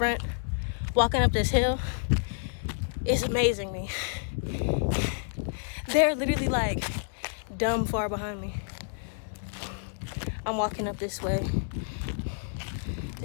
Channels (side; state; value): right; silent; digital silence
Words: walking up this hill is amazing me. They're literally like dumb far behind me. I'm walking up this way.